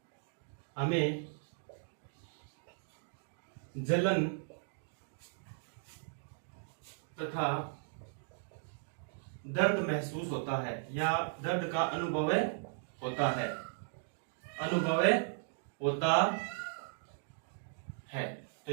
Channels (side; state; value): left; silent; digital silence